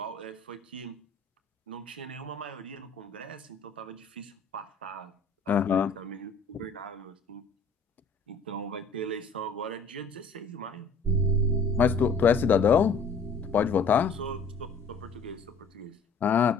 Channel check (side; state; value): right; quieter; 4.2 dB